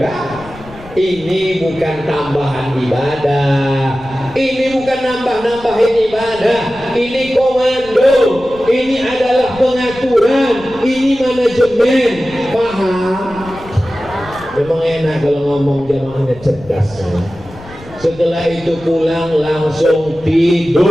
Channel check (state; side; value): noise; left; rumble, 19 dB below the sound